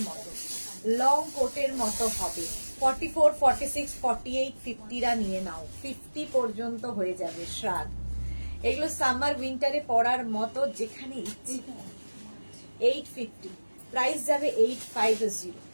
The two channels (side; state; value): both; inverted; correlation -1.00